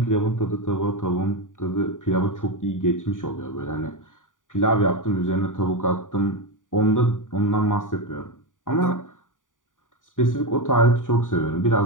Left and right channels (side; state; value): right; late; 0.88 ms